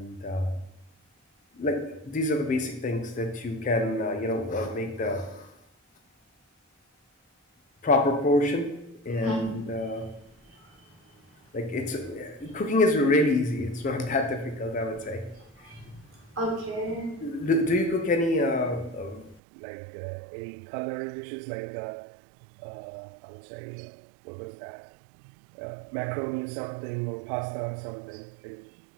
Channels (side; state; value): left; drops out; at 19.4 s